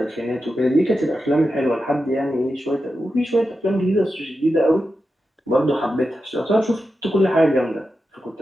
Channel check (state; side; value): normal; both; correlation 0.90